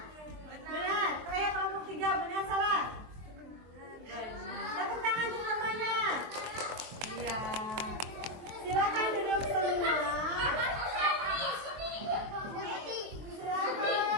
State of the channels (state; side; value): late; left; 23 ms